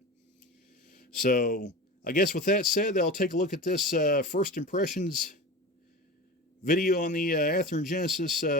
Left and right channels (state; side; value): normal; both; correlation 0.30